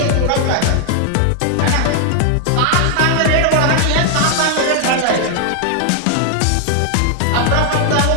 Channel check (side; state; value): both; different; correlation 0.00